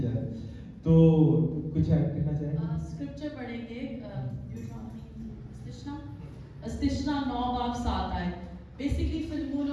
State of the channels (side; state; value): both; identical; correlation 1.00